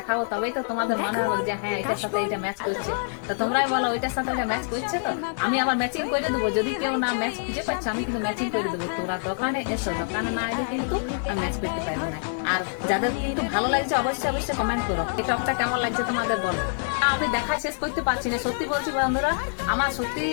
তবেই তো তোমাদের মনে হবে যে হ্যাঁ এটার সাথে এটা ম্যাচ করছে। তো তোমরাই বলো ওইটার সাথে এটা ম্যাচ করছে, তো আমি আবার ম্যাচিং করে দেবো। যদি কেউ না ম্যাচ খুঁজে পাচ্ছে আমি কিন্তু ম্যাচিং করে দেবো। তোরা দোকানে এসো, দোকানে না এলে কিন্তু আমি ম্যাচ করতে পারবো না। আর যাদের কিন্তু ভালো লাগছে অবশ্যই কমেন্ট করো এই টপটা কেমন লাগছে তোমাদের বলো। আমি দেখা শেষ করতে পারছি না, সত্যি বলছি বন্ধুরা, আমার সত্যি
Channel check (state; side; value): silent; right; digital silence